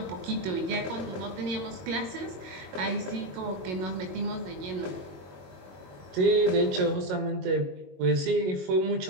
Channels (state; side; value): late; left; 22 ms